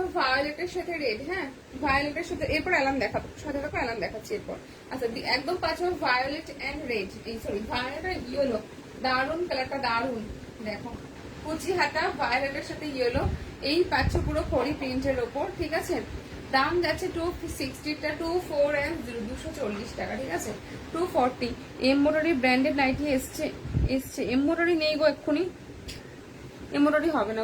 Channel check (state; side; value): identical; both; correlation 1.00